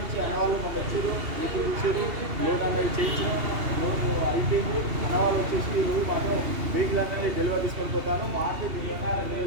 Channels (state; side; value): late; left; 2.8 ms